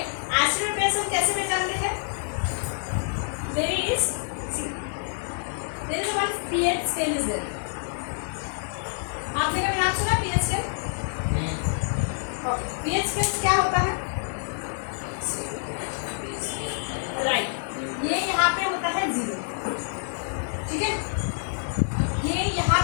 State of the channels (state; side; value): silent; right; digital silence